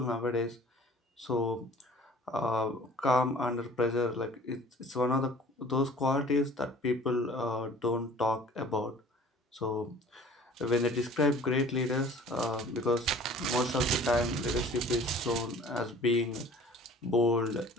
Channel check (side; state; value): both; normal; correlation 0.48